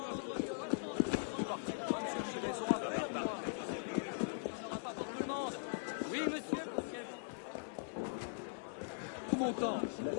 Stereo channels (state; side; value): silent; right; 50 dB below the other